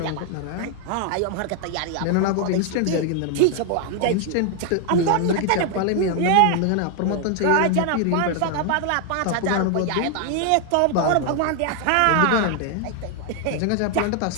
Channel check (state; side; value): different; both; correlation 0.00